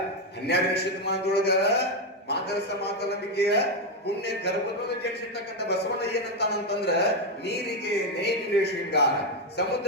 12ನೇ ಶತಮಾನದೊಳಗ ಮಾದರ ಸಮಾಜಲಂಬಿಕೆಯ ಪುಣ್ಯ ಗರ್ಭದೊಳಗೆ ಜನಿಸಿರ್ತಕ್ಕಂಥ ಬಸವಣ್ಣ ಏನಂತಾನಂತಂದ್ರ ನೀರಿಗೆ ನೇಗಿಲೇ ಶೃಂಗಾರ,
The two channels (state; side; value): normal; both; correlation 0.06